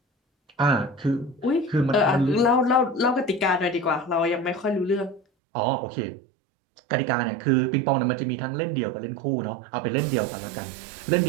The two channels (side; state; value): left; drops out; at 5.2 s